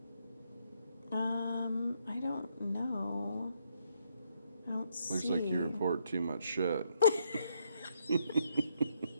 I don't know. I don't see. Looks like you report too much shit.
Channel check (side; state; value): both; inverted; correlation -0.74